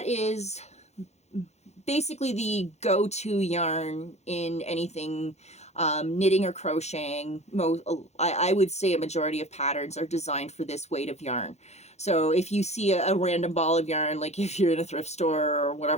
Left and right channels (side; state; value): right; late; 0.32 ms